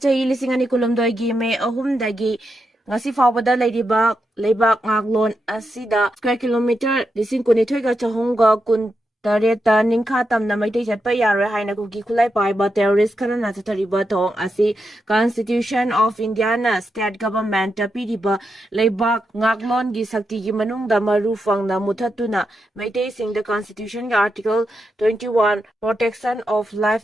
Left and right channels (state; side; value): normal; both; correlation 0.85